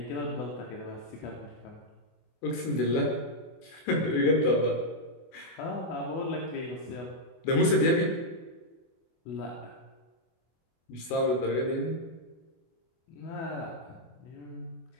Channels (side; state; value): right; late; 24 ms